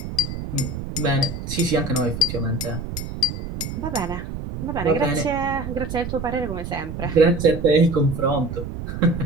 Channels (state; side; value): noise; right; rumble, 7 dB below the sound